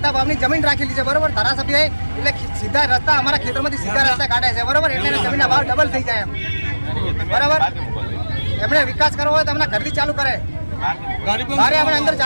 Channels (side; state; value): both; inverted; correlation -1.00